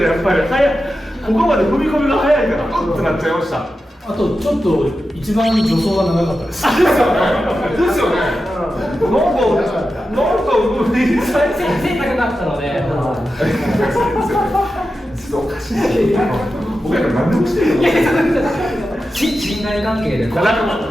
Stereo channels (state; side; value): normal; both; correlation 0.91